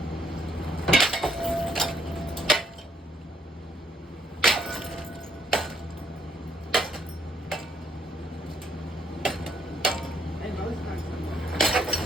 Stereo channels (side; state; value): both; normal; correlation 0.70